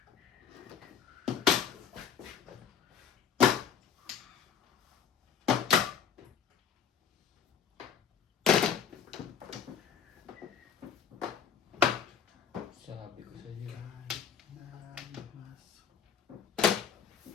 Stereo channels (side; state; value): right; quieter; 7.9 dB